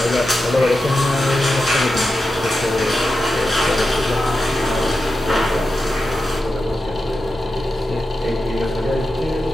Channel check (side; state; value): both; normal; correlation 0.90